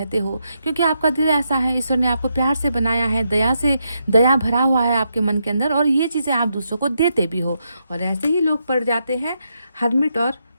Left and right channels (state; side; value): inverted; both; correlation -0.82